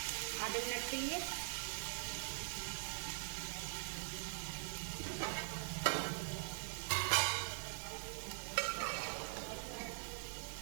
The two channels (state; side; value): silent; left; digital silence